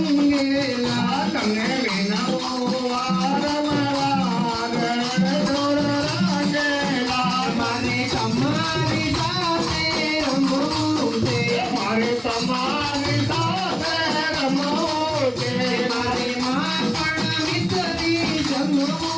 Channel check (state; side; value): identical; both; correlation 1.00